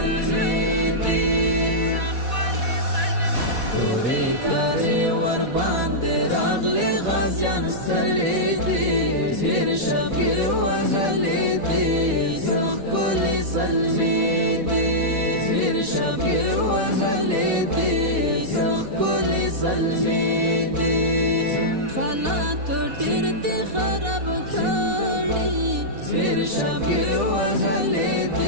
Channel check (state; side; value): late; left; 4.1 ms